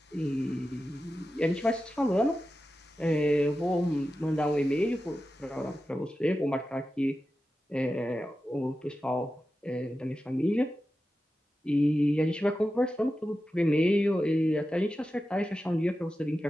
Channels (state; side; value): normal; both; correlation 0.92